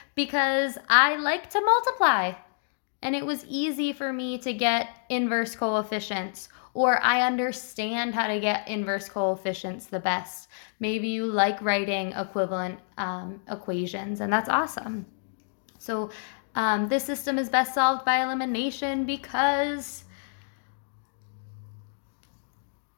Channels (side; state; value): right; silent; digital silence